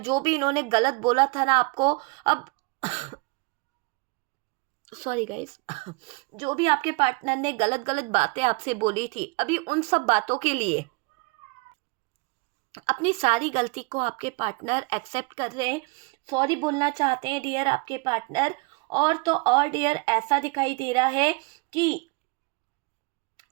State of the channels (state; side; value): quieter; left; 27.8 dB